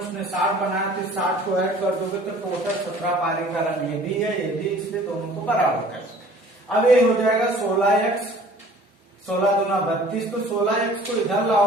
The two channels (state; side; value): normal; both; correlation 0.50